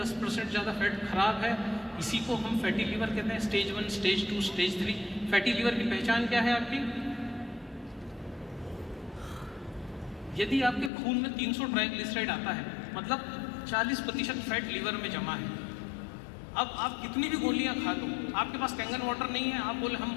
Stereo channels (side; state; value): right; drops out; at 10.9 s